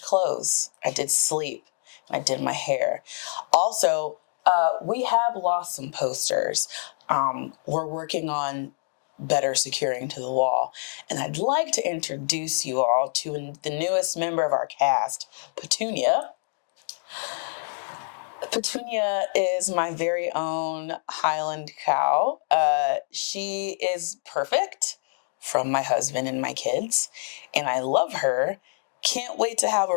clothes. I did sleep. I did my hair. Also, we have lost some posters. We're working on better securing to the wall. And I'd like to introduce you all to the newest member of our cast, Petunia. Petunia is my very own Highland cow. She is perfect from my husband and my kids, and I love her. Can't wait to have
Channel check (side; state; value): right; silent; digital silence